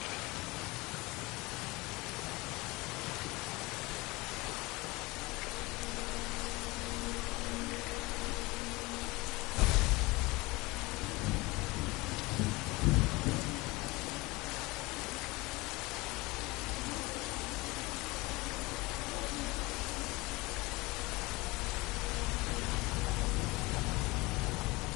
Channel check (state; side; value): quieter; right; 23.0 dB